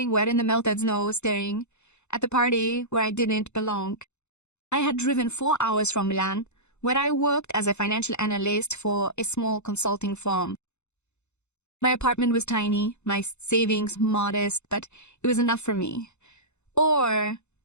wet in the melted snow, staring at the party where I didn't belong. I had driven 4 hours from Milan, where I worked as a financial analyst for a small consulting firm. My apartment was tiny, my savings modest, but it was enough for me. Or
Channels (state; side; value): late; right; 0.82 ms